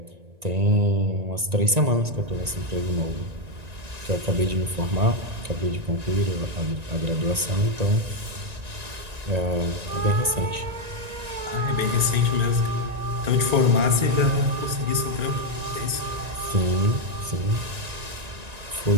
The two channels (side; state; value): left; late; 1.9 ms